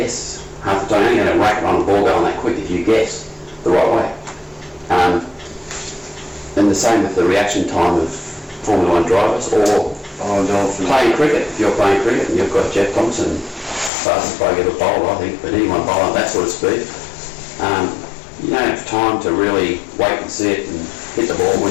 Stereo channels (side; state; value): right; drops out; at 13.9 s